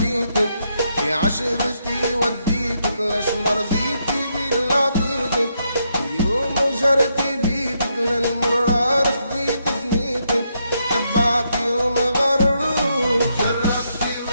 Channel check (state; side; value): inverted; both; correlation -0.78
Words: في عشرتي وديتك ليش مرضيتي باللي عطيتك. اليوم جرتي بيتك للمرار خديت فنيتك، تبعتي وما